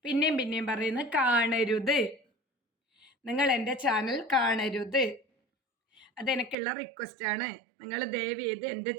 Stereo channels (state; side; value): drops out; left; at 6.6 s